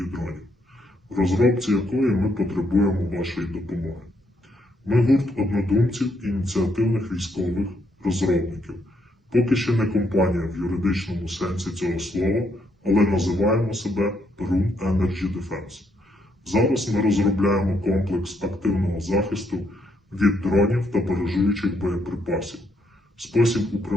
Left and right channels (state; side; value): normal; both; correlation 0.74